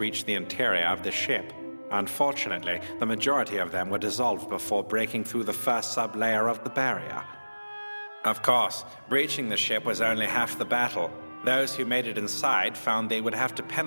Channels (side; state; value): both; inverted; correlation -1.00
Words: the interior of the ship. Unfortunately, the majority of them were dissolved before breaking through the first sub-layer of the barrier. Of course, breaching the ship was only half the battle. Those who made it inside found they would have to